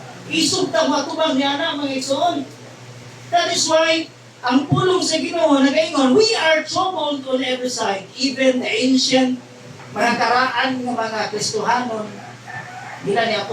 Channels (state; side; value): identical; both; correlation 1.00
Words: Isog ta matubang niya na mga igsoon. That is why ang pulong sa Ginoo nagaingon, we are troubled on every side, even the ancient mga karaan ng mga Kristohanon, nila ni